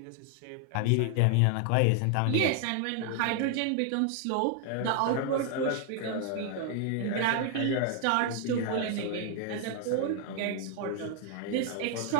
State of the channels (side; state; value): both; different; correlation 0.00